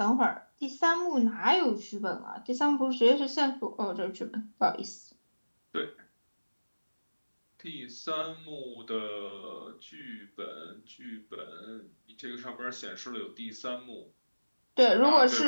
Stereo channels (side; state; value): both; inverted; correlation -1.00